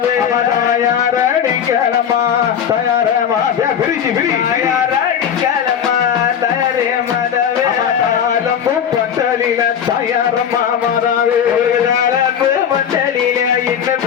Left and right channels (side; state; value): right; quieter; 8.4 dB